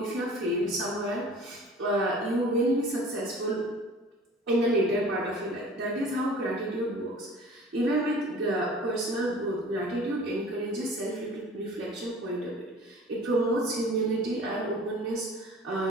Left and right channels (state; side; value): normal; both; correlation 0.45